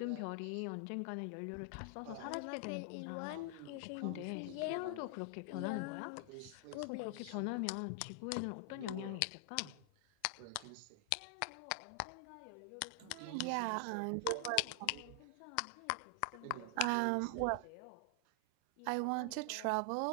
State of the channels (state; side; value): different; both; correlation 0.00